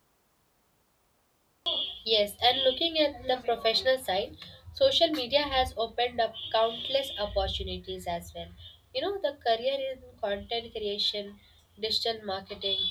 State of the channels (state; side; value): identical; both; correlation 1.00